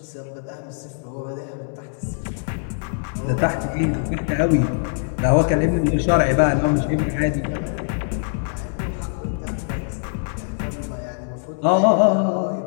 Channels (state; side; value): silent; right; 64 dB below the other